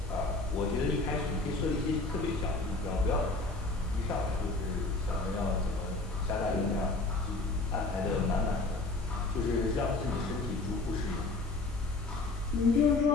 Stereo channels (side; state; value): right; quieter; 3.3 dB